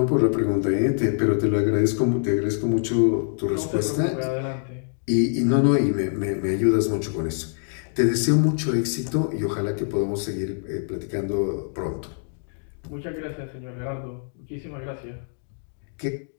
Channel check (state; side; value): silent; right; digital silence